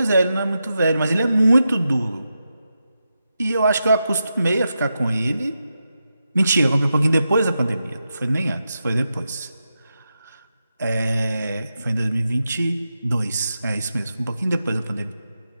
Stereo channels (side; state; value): both; inverted; correlation -0.88